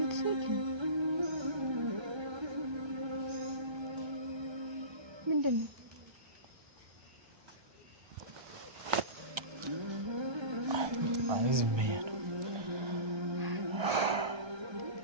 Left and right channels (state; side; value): late; left; 1.3 ms